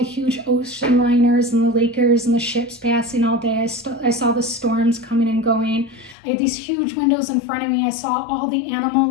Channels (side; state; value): right; drops out; at 6.2 s